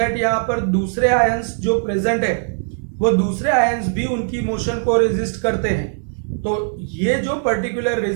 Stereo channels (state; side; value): silent; left; digital silence